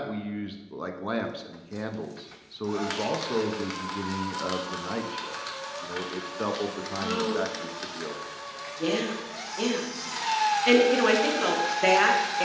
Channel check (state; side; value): identical; both; correlation 1.00